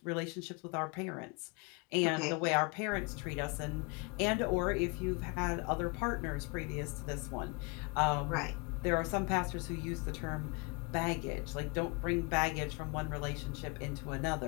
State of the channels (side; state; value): right; quieter; 30.2 dB